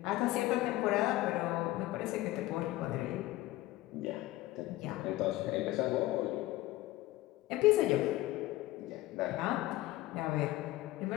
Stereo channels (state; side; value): quieter; right; 17.1 dB